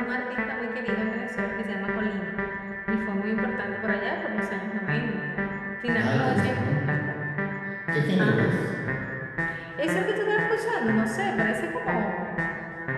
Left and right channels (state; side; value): identical; both; correlation 1.00